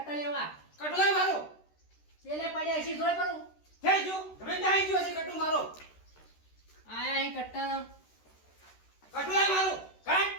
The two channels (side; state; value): right; late; 13 ms